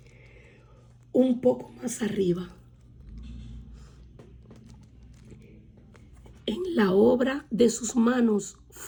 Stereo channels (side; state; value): both; identical; correlation 1.00